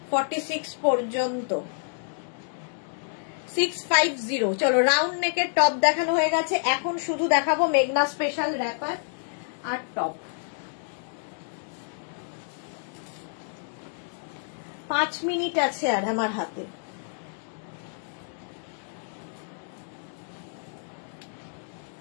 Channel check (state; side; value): silent; right; digital silence